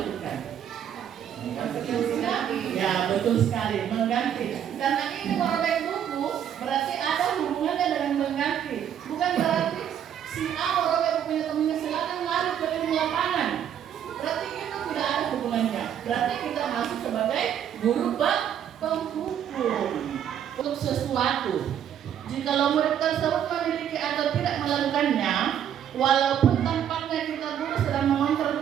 Konsekuensinya? Ya, betul sekali, mengganti. Karena ini merobek buku berarti ada hubungannya dengan mengganti. Bukan berarti si A merobek bukunya temannya, silakan lari ke lapangan. Berarti itu tidak ada hubungannya. Berarti kita masuk sebagai guru penghukum untuk sesuatu. Jikalau murid tersebut memiliki atau tidak melakukannya, walaupun tampaknya kita guru sedang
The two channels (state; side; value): quieter; left; 9.5 dB